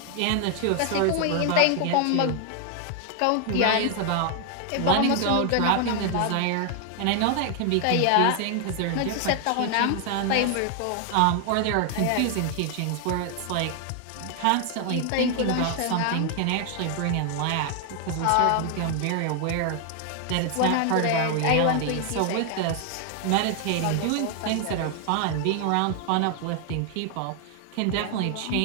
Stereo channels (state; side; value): different; both; correlation 0.00